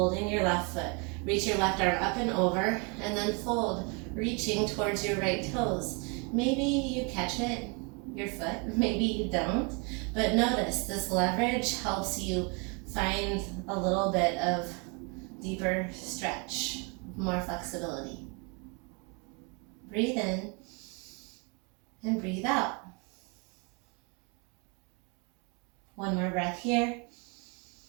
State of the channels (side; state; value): left; quieter; 33.0 dB